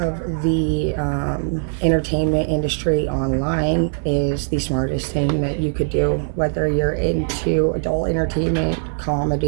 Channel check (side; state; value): left; silent; 65 dB below the other